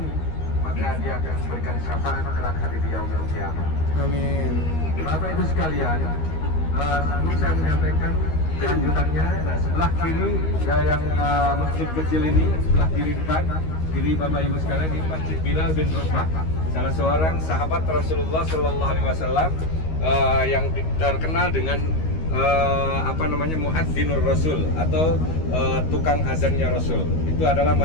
maka dia akan memberikan syafaat kelak hari di yaumil kiamat. Amin. Bapak Ibu sekalian, sebelum saya menyampaikan lanjutannya, nah sebelah kiri yang masjid kecil ini, sebelah kiri depan, kiri Bapak Ibu sekalian, ini Masjid Bilal bin Rabah, salah seorang sahabat Rasulullah Shallallahu Alaihi Wasallam yang terkenal dengan muadzinur Rasul atau tukang azannya Rasul. Itu adalah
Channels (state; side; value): late; right; 13 ms